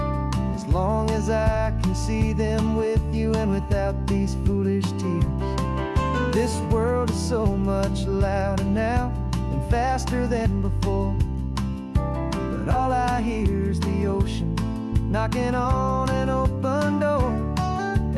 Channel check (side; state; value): both; identical; correlation 1.00